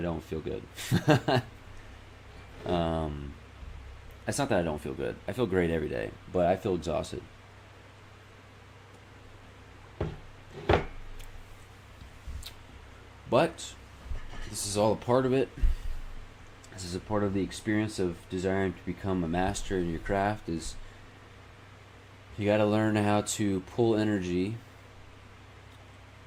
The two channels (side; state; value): both; identical; correlation 1.00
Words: feel good. It's not that I don't feel good. I feel great every day, but I feel exhausted. But this is all a part of it. This is a part of the experience of desiring to become a master in your craft. Is you got to learn how to pull energy